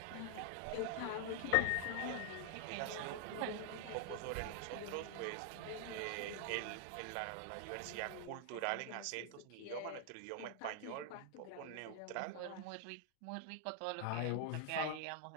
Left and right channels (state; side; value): different; both; correlation 0.00